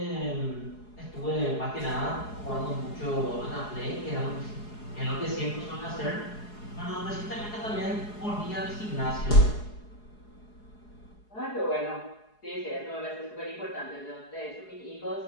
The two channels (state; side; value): late; right; 4.8 ms